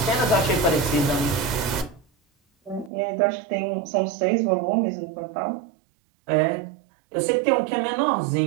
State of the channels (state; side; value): drops out; left; at 2.9 s